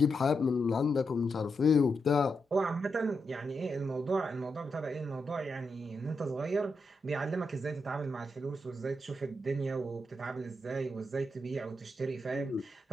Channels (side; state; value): both; normal; correlation 0.84